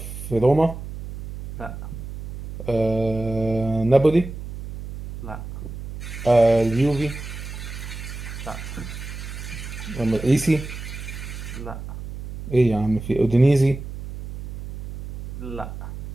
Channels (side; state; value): right; noise; hum, 9 dB below the sound